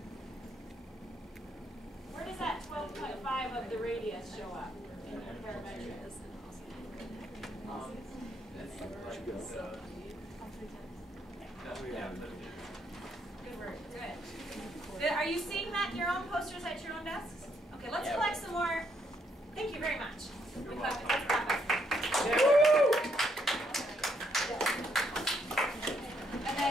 Where does that 12.5 of the radius show up in your parametric? Good work. Good. Are you seeing that in your own posters at your own desks? Okay, let's collect some more. Thank you very much. Let's clap up. And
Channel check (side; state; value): both; normal; correlation 0.73